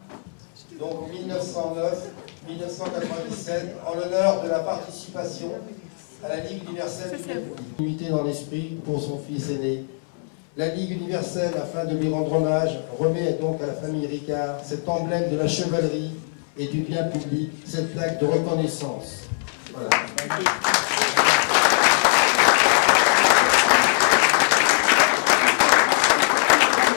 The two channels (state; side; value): silent; right; 64 dB below the other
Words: Donc 1909, 1997 en l'honneur de la participation à la Ligue universelle du Midi. Unité dans l'esprit pour son fils aîné. La Ligue universelle, afin de lui rendre hommage, remet donc à la famille Ricard cet emblème de la chevalerie et du bien public, cette plaque de reconnaissance. Voilà.